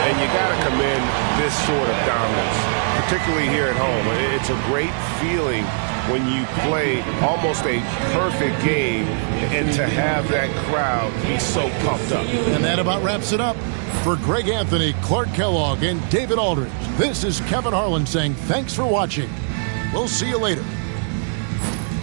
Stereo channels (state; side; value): silent; left; 56 dB below the other